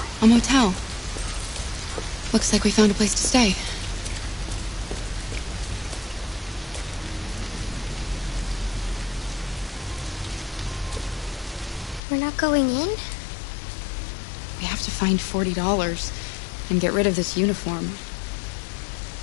A motel. Looks like we found a place to stay. We're not going in? We have to find $40 and get rid of this uniform.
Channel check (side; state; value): right; drops out; at 12.0 s